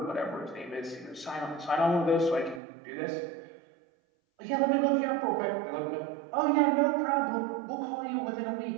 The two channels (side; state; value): left; drops out; at 2.6 s